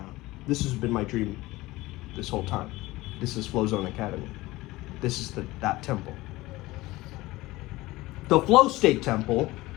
This has been my dream this whole time. This is Flow Zone Academy. This is that temple. The flow state temple,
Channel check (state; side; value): quieter; right; 19.3 dB